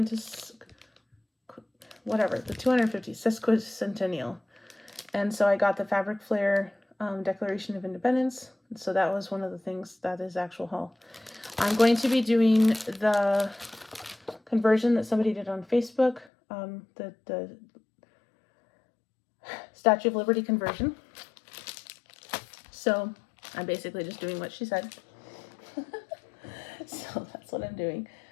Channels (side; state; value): right; drops out; at 16.2 s